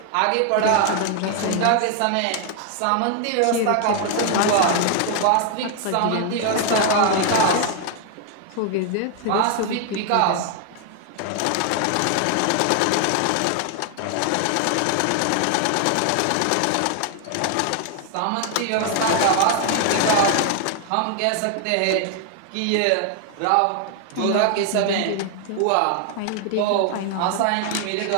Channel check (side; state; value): both; different; correlation 0.00